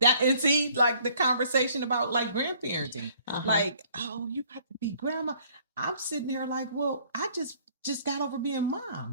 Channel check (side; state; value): both; inverted; correlation -0.59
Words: and see like the conversation about like grandparenting, like, oh, you got to be grandma. I'm sitting here like, well, I just got over being